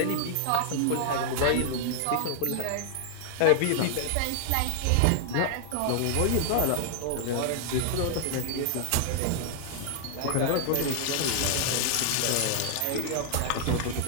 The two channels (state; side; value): different; both; correlation 0.00